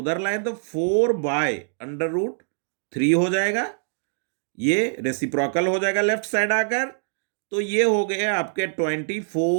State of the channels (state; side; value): silent; left; digital silence